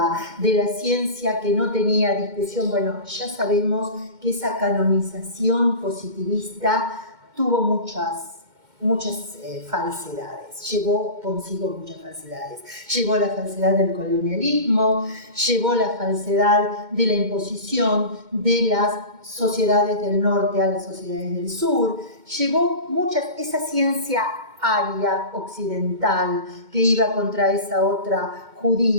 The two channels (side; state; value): left; late; 2.1 ms